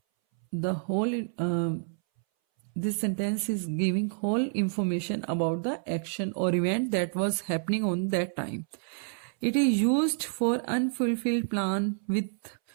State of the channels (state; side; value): silent; left; 59 dB below the other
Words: the whole this sentence is giving whole information about the action or event that was happening on that time. It is used for unfulfilled plan with